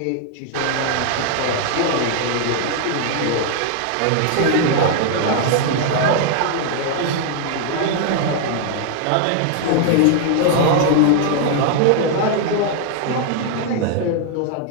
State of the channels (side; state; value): both; different; correlation 0.00